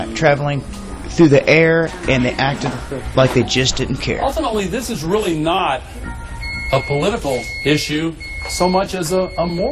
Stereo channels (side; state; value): both; identical; correlation 1.00